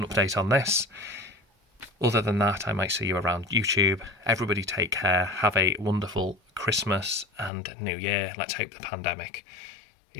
update on this. Other than that, I might see you around YouTube. Everybody take care. Have a wonderful Christmas and New Year. Let's hope the pandemic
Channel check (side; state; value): right; drops out; at 7.5 s